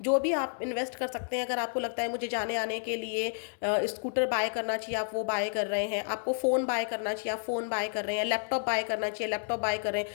जो भी आप इन्वेस्ट कर सकते हैं। अगर आपको लगता है मुझे जाने आने के लिए स्कूटर बाय करना चाहिए, आप वो बाय कर रहे हैं। आपको फ़ोन बाय करना चाहिए, आप फ़ोन बाय कर रहे हैं। लैपटॉप बाय करना चाहिए, लैपटॉप बाय कर रहे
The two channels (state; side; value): silent; right; digital silence